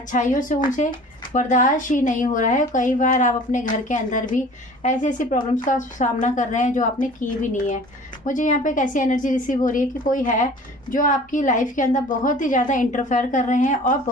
से उनसे बर्दाश्त ही नहीं हो रहा है। कई बार आप अपने घर के अंदर भी ऐसी ऐसी प्रॉब्लम्स का सामना कर रहे हैं जो आपने की भी नहीं है। मुझे यहाँ पे एक ऐसी एनर्जी रिसीव हो रही है कि कोई है जो आपकी लाइफ के अंदर बहुत ही ज़्यादा इंटरफेयर कर रहे हैं और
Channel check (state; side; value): normal; both; correlation 0.45